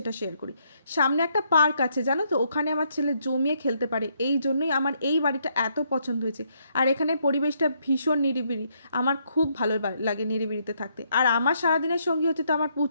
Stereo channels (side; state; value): both; inverted; correlation -0.73